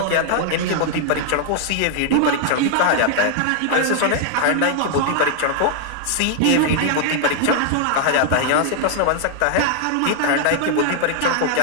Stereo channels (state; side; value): different; both; correlation 0.00